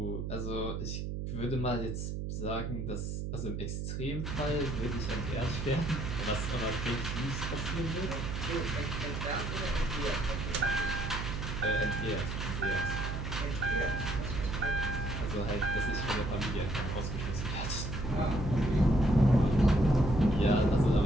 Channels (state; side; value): noise; right; hum, 4 dB below the sound